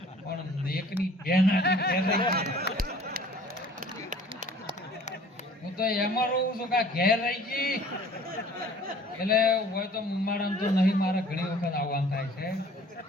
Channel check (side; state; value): both; normal; correlation 0.51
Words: પણ એકની બેન હું તો એમાં રહું છું કે ઘેર રહી ગઈ. એટલે હોય તો મારા તો નહીં, મારે ઘણી વખત આવવાનું થાય છે